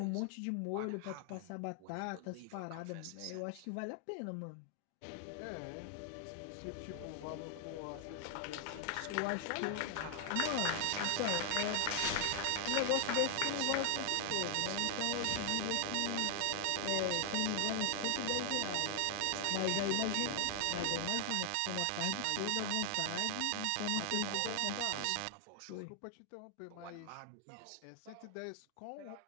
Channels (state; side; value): different; both; correlation 0.00